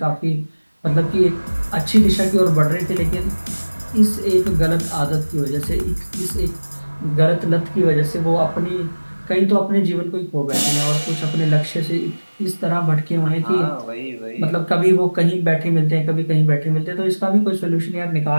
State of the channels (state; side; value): inverted; both; correlation -1.00